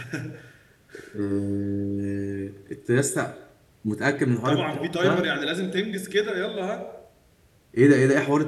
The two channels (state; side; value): identical; both; correlation 1.00